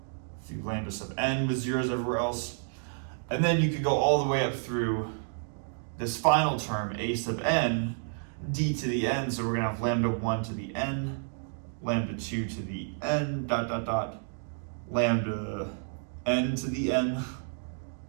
through lambda sub n with zeros everywhere else. And then you could go all the way up through this final term, a sub n, d to the n, so we're going to have lambda 1 to the n, lambda 2 to the n, dot, dot, dot, lambda n to the n,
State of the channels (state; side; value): silent; left; digital silence